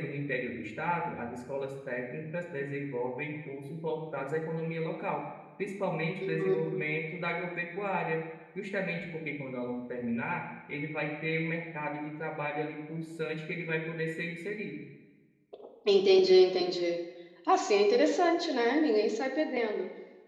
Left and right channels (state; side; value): identical; both; correlation 1.00